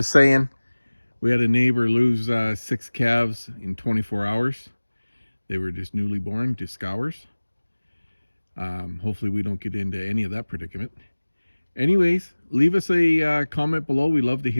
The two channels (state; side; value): inverted; both; correlation -1.00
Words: saying, we had a neighbor lose 6 calves in 24 hours. They were just newly born, just scours. Hopefully we don't get into any of that predicament. Anyways, leave us a comment below. We love to